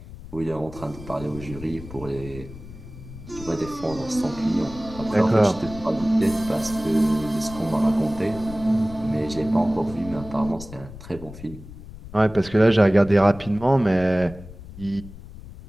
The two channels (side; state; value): left; noise; rumble, 15 dB below the sound